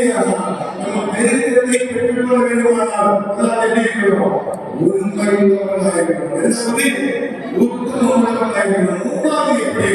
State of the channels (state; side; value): identical; both; correlation 1.00